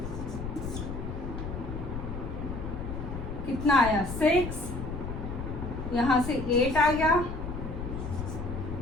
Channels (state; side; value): noise; left; rumble, 6 dB below the sound